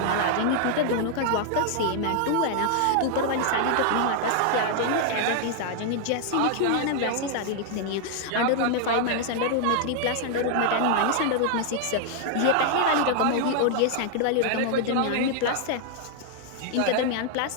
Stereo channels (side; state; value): both; different; correlation 0.00